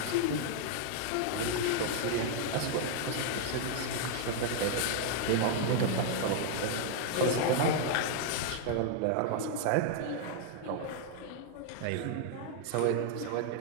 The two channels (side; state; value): both; different; correlation -0.01